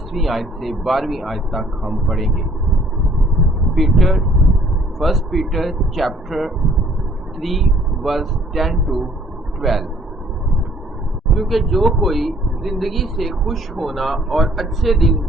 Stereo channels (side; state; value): both; normal; correlation 0.59